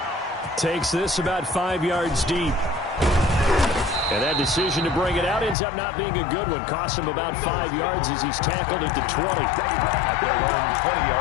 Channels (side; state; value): right; drops out; at 5.6 s